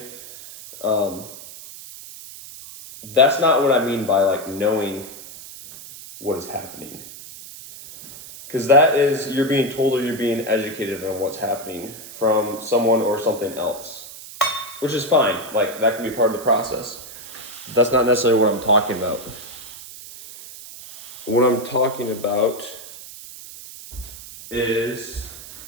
That's not what I mean by like knowing what is happening. Because that is, you're being told or you're being educated on what's happening from someone or something else, which is fine. Like that can be part of the process. That's not necessarily what I'm talking about. What I'm talking about is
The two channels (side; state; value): right; noise; hiss, 15 dB below the sound